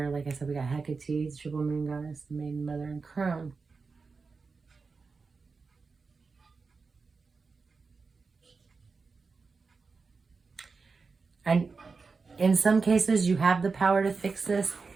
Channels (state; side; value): quieter; left; 4.6 dB